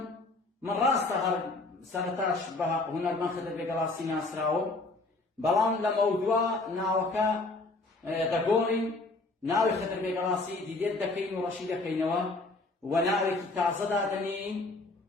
من ڕاستە هەر سەرەتاش بە هونەرمەند خدر بێگەڵاسی ناسراوە بەڵام لە مەودووە ناوەکە دەگۆڕین ناوی خدر بێگەڵاسی دیلێت دەکەین و ڕەشی دەکەینەوە و ناوێکی تازە دادەنین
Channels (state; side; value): quieter; right; 3.2 dB